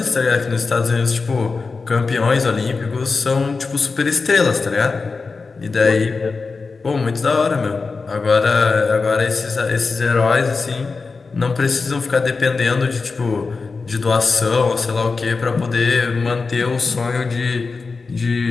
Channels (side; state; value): right; quieter; 4.3 dB